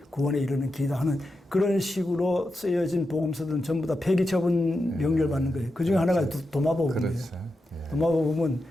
구원에 이르는 길이다 하는 그런 식으로 쓰여진 복음서들은 전부 다 폐기 처분 명령을 받는 거예요. 그 중에 하나가 도마복음이에요. 그렇죠. 도마복음은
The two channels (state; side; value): normal; both; correlation 0.88